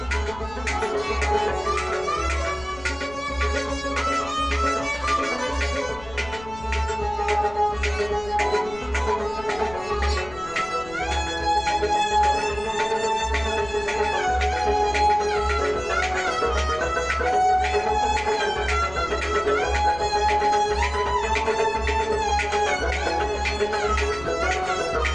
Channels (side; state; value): left; noise; rumble, 17 dB below the sound